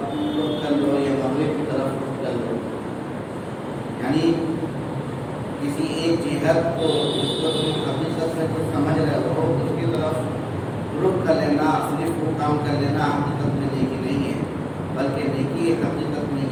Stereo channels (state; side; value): identical; both; correlation 1.00